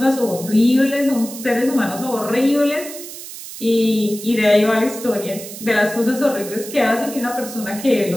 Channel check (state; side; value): noise; right; hiss, 12 dB below the sound